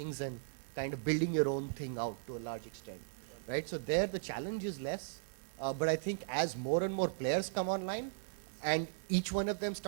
and kind of building your own thing out to a large extent, right? So there the challenge is less, but I think as more and more players come online and each one of them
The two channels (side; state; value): left; silent; 53 dB below the other